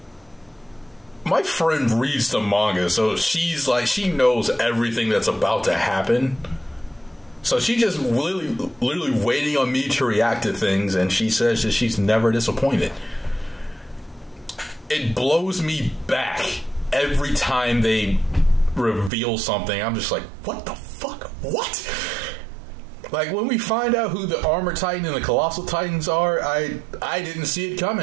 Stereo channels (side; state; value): left; drops out; at 19.1 s